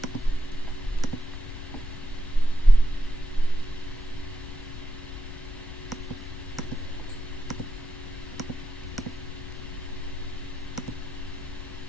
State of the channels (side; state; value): left; noise; rumble, 11 dB below the sound